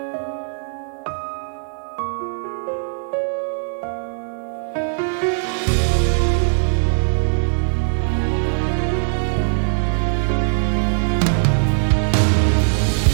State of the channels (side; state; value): left; silent; 66 dB below the other